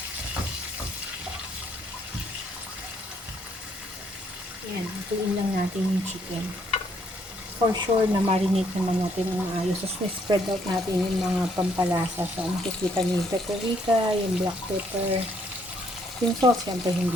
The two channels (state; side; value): normal; both; correlation 0.69